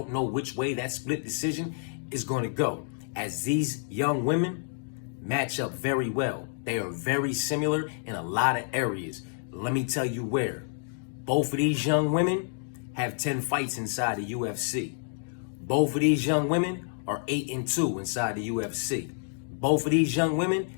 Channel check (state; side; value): silent; right; digital silence